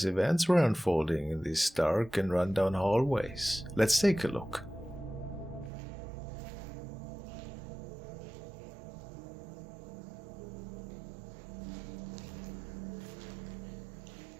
events were unfolding in these dark and rundown hallways. Let's take a look.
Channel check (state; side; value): drops out; left; at 5.7 s